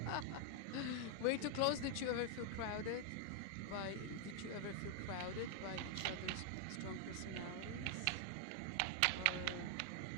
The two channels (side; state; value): both; different; correlation 0.00